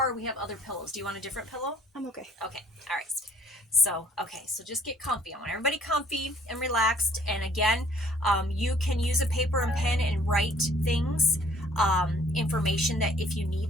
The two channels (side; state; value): both; normal; correlation 0.58